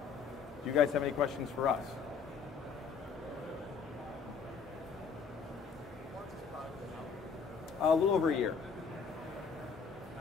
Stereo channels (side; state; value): right; quieter; 5.9 dB